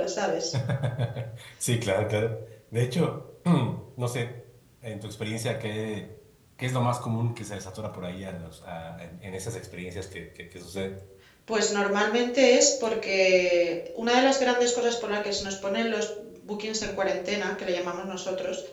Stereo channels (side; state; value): both; identical; correlation 1.00